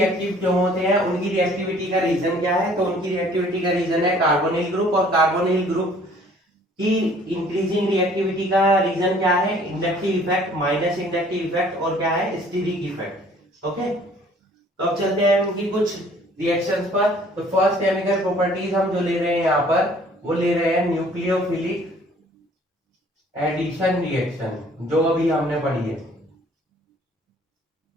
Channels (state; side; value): normal; both; correlation 0.56